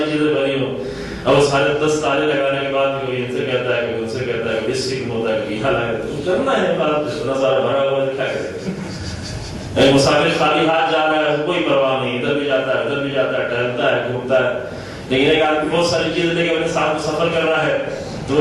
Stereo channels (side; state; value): both; identical; correlation 1.00